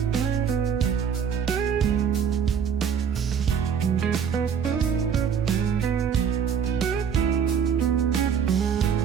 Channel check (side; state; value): left; quieter; 7.3 dB